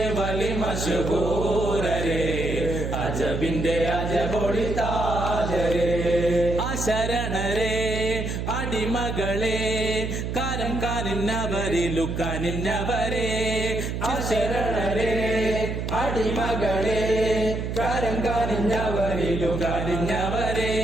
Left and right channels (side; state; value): right; noise; hum, 3 dB below the sound